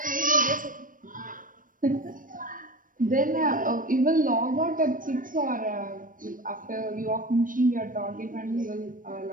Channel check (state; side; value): late; left; 0.40 ms